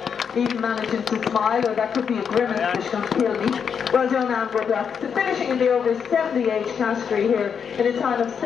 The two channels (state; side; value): quieter; right; 7.0 dB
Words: Even managing to smile, or that could be a grimace that's going to kill me. Well done, Anne Woodlock. So finishing in the over 70 age category here in a time of